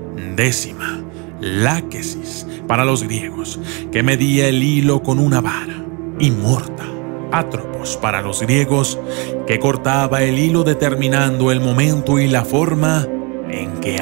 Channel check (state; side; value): quieter; left; 31.1 dB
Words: Décima, Láquesis para los griegos, que medía el hilo con una vara; y Morta, Atropos para los griegos, que cortaba el hilo determinando el momento y la forma en que